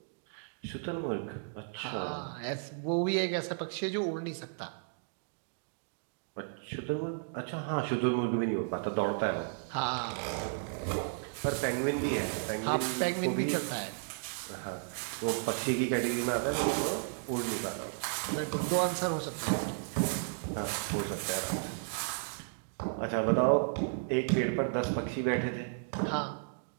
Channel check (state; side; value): silent; left; digital silence